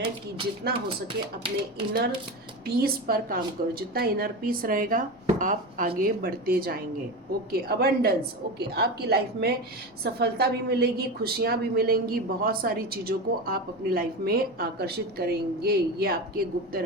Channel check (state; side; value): normal; both; correlation 0.22